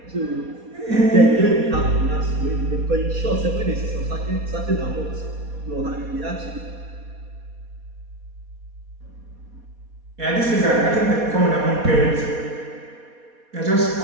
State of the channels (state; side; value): late; left; 4.2 ms